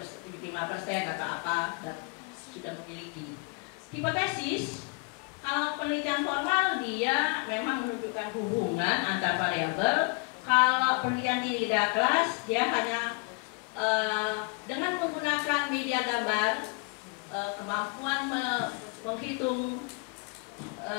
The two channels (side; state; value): right; quieter; 32.1 dB